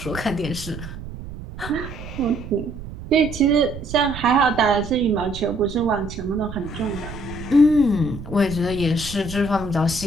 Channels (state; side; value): noise; right; rumble, 11 dB below the sound